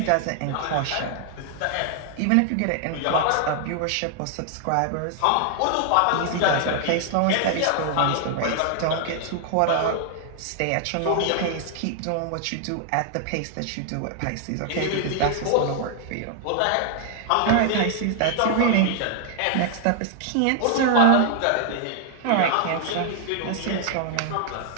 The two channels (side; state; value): both; different; correlation 0.00